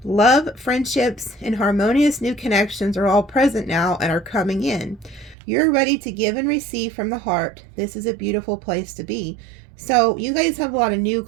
Love, friendships, and harmonious new connections are all present now and are coming in. You're ready to give and receive from the heart. This is a beautiful place to be. So you guys have a lot of new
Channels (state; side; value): drops out; left; at 5.4 s